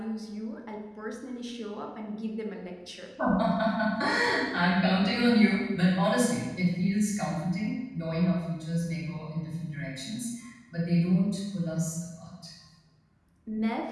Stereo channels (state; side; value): identical; both; correlation 1.00